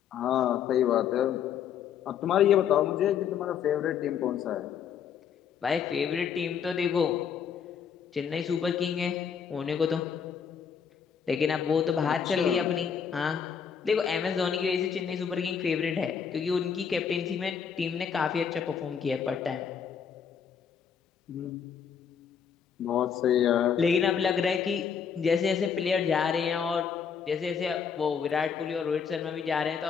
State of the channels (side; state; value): right; quieter; 7.3 dB